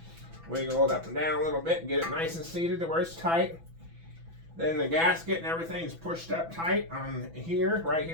Wiggle it up and down a little bit and get it nice and seated to where it's tight. Then the gasket and everything's pushed up tight on here. Right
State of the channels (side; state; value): left; late; 6.0 ms